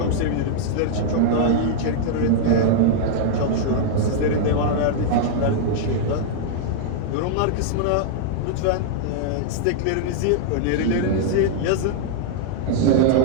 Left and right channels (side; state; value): both; different; correlation -0.01